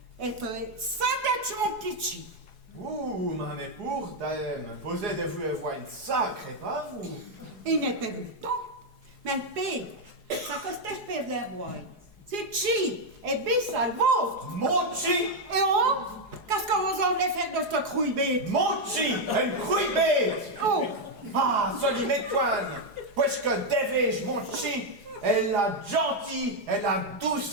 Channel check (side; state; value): left; late; 4.8 ms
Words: elle peut être sans tête mon petit chi. Ouh, mais pour dame, vous êtes vous avoir une sacrée, pas vous? Il n'est pas vu le temps. Mais le paye, ça coste espèce d'un bois. C'est chi, et bis à le vôtre. Mochi! Et oh, qu'est-ce que vous en voulez faire de ce crouille bête? Mochi! Une couille bête! Oh, Ah, soli m'étoine! Puisque devais-je, Mochi, Elle a gentil, elle a